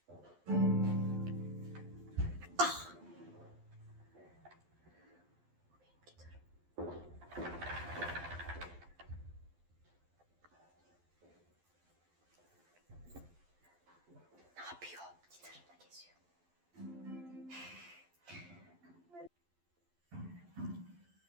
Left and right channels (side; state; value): left; late; 11 ms